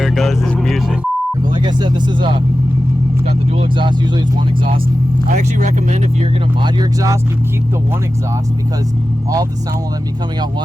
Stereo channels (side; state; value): both; normal; correlation 0.94